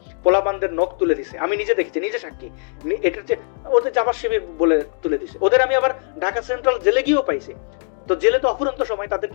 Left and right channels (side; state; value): right; silent; 65 dB below the other